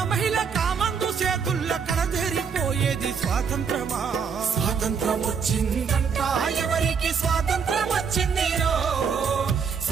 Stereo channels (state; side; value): quieter; left; 6.3 dB